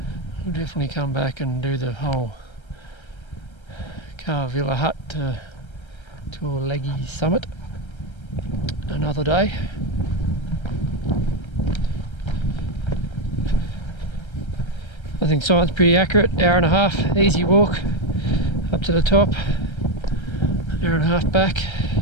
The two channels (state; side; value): late; right; 1.3 ms